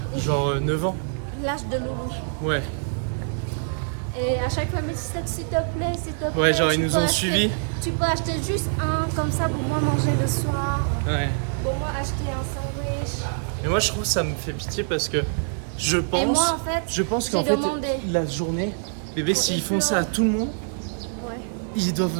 Genre 9 ans? L'âge de Loulou. Ouais. Et à chaque fois, mais s'il te plaît, s'il te plaît. Ouais, genre ils tu nous peux ont acheter- suivis. Tu peux acheter juste un, comme ça, pour moi manger le soir. Ouais. Pour moi acheter un sandwich. Et moi je trouve ça me fait pitié parce que je pense... moi, en fait, je pense j'ai qu'en fait, demandé. la journée, bébé, s'ils font ça à tout le monde, Ouais. ils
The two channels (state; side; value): silent; left; digital silence